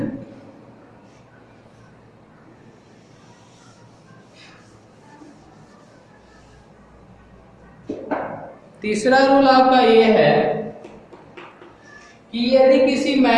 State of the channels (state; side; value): identical; both; correlation 1.00